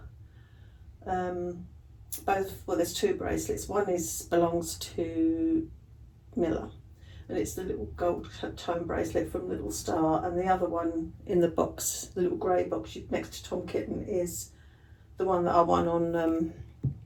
both, well, there's two bracelets. One belongs to Miller, and it's the little gold tone bracelet from Little Star, and the other one in the box, the little grey box next to Tom Kitten, is the one that I won on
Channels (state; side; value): identical; both; correlation 1.00